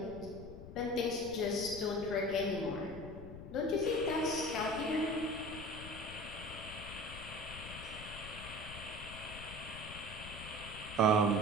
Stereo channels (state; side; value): noise; left; rumble, 12 dB below the sound